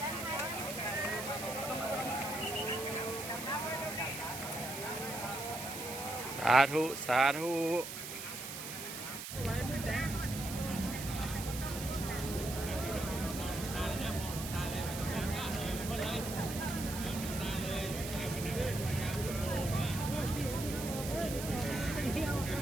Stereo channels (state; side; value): noise; right; hiss, 8 dB below the sound